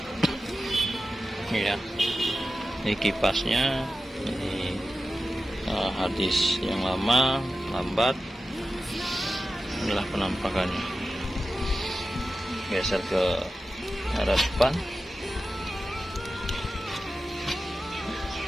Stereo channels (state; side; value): normal; both; correlation 0.93